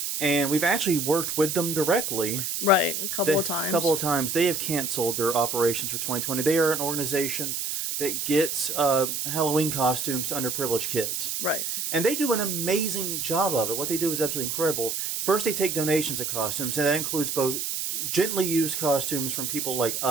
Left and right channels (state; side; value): noise; right; hiss, 2 dB below the sound